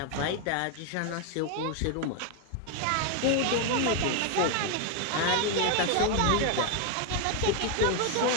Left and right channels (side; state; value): both; different; correlation 0.01